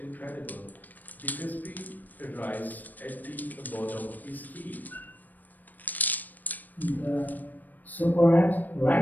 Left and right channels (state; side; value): late; right; 0.085 ms